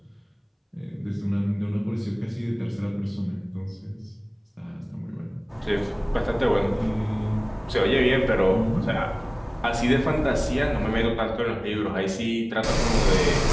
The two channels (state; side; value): identical; both; correlation 1.00